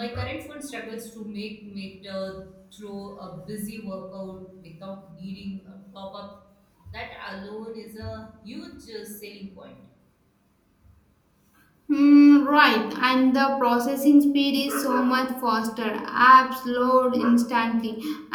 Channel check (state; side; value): identical; both; correlation 1.00